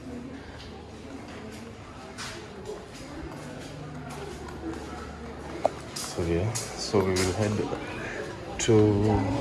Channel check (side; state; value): both; identical; correlation 1.00